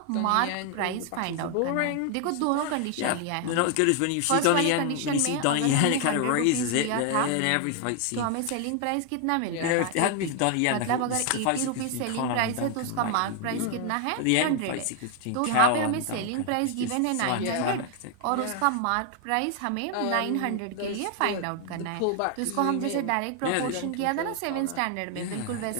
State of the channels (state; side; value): different; both; correlation 0.00